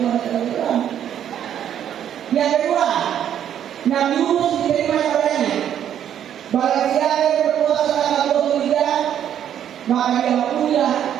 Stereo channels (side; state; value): left; quieter; 9.9 dB